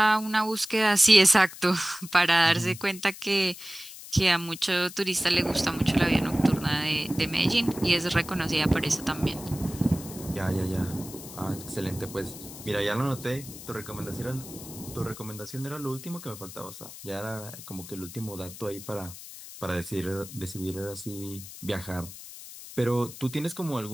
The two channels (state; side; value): noise; left; hiss, 14 dB below the sound